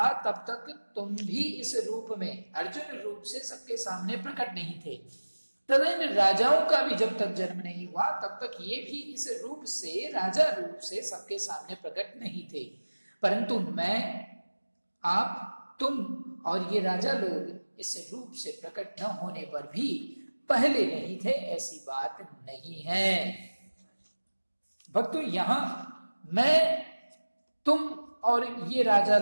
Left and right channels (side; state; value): both; inverted; correlation -1.00